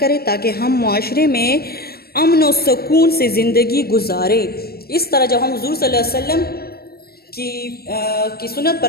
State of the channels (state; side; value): late; right; 0.45 ms